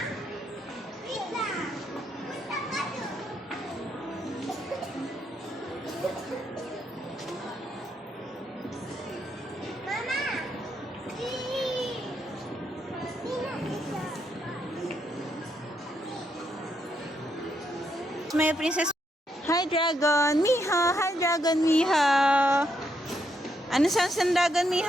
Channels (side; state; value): both; normal; correlation 0.78